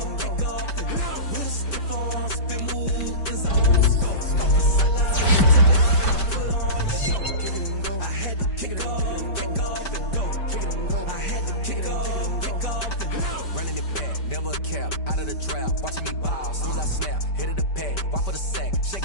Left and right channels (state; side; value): late; right; 5.1 ms